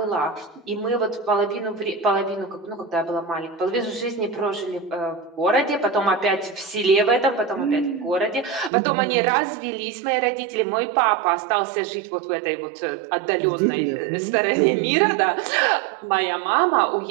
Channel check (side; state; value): left; drops out; at 8.7 s